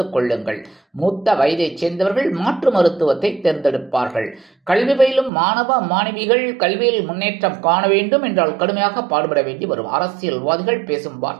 கொள்ளுங்கள். மூத்த வயதைச் சேர்ந்தவர்கள் மாற்று மருத்துவத்தை தேர்ந்தெடுப்பார்கள். கல்வி பயிலும் மாணவ மாணவிகள் கல்வியில் முன்னேற்றம் காண வேண்டும் என்றால் கடுமையாக பாடுபட வேண்டி வரும். அரசியல்வாதிகள் பேசும்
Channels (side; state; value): left; drops out; at 5.3 s